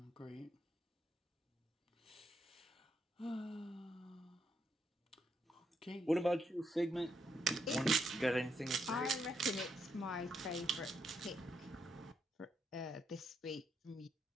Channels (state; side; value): normal; both; correlation 0.78